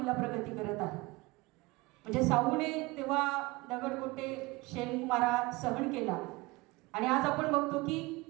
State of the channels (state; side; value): quieter; left; 22.7 dB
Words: प्रगती करत आहे. म्हणजे साऊने तेव्हा दगडगोटे शेणमारा सहन केला आणि आज आपण बघतो की